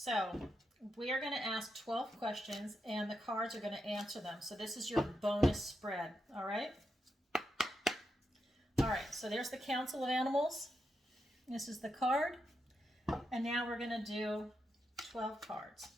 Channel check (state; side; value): normal; both; correlation 0.85